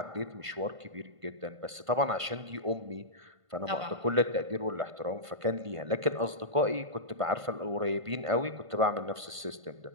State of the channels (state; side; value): late; left; 1.5 ms